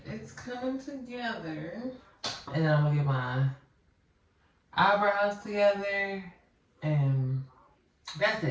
It's coming together. And then I'm gonna get my eyebrows together. And that's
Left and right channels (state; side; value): identical; both; correlation 1.00